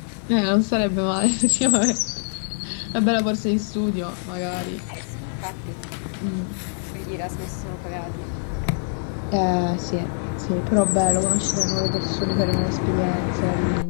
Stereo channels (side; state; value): right; silent; digital silence